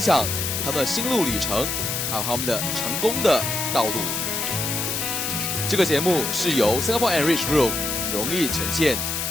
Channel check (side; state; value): left; noise; hiss, 2 dB below the sound